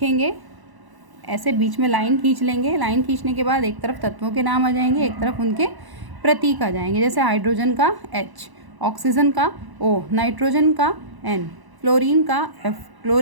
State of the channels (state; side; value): late; left; 1.0 ms